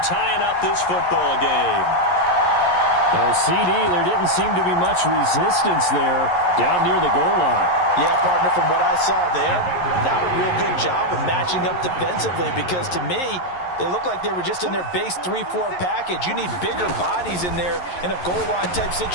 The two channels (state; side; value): late; right; 11 ms